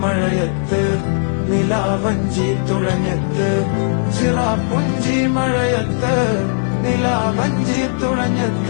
മഴയത്ത് നിലാവഞ്ചി തുഴഞ്ഞത്ത് ചിറാപ്പുഞ്ചി മഴയത്ത് നിലാവഞ്ചി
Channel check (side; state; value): right; silent; digital silence